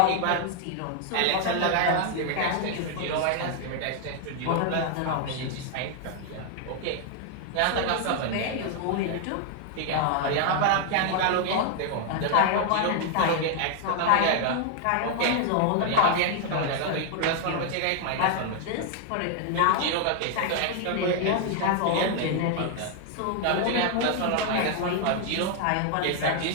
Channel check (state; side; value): different; both; correlation 0.00